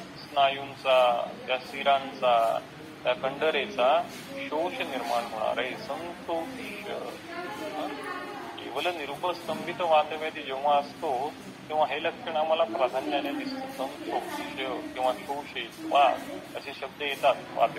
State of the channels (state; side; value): identical; both; correlation 1.00